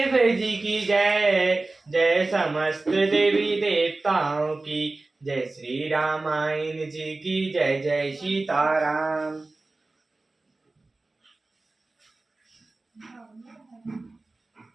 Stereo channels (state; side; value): quieter; left; 3.2 dB